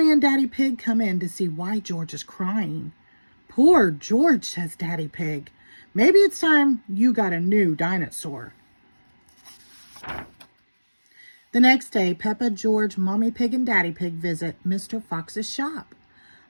and Daddy Pig come in to see why George is crying. "Poor George," says Daddy Pig. "Maybe it's time you got a new dinosaur." The next day, Peppa, George, Mommy Pig, and Daddy Pig visit Mr. Fox's shop.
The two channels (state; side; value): inverted; both; correlation -1.00